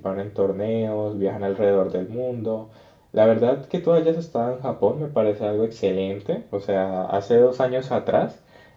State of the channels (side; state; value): both; identical; correlation 1.00